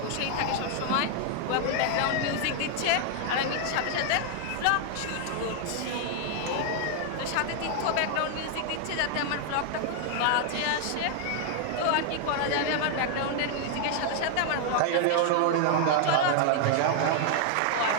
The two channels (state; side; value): different; both; correlation 0.00